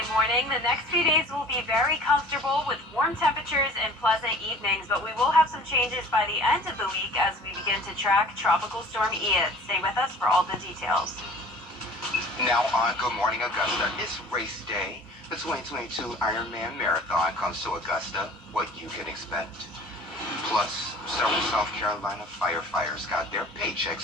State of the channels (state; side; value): normal; both; correlation 0.47